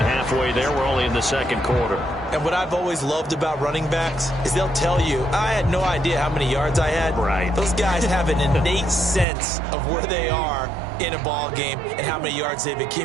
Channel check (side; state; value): left; drops out; at 9.2 s